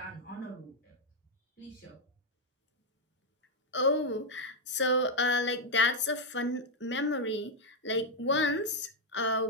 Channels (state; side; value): normal; both; correlation 0.00